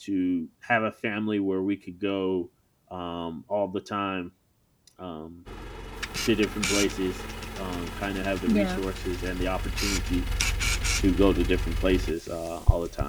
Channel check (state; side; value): identical; both; correlation 1.00